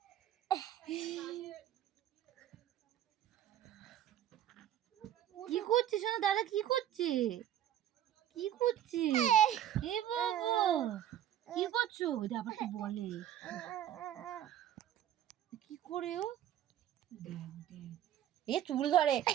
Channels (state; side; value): quieter; left; 11.3 dB